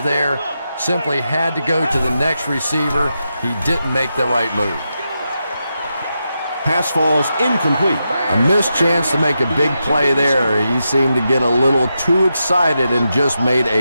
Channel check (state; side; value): inverted; both; correlation -0.87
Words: simply had to go to the next receiver. He didn't make the right move. Pass falls incomplete. A missed chance to make a big play there. He seemed to get a little too excited and just made